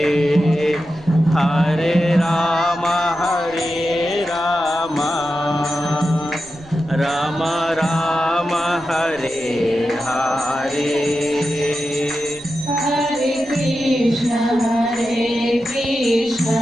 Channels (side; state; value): right; noise; rumble, 26 dB below the sound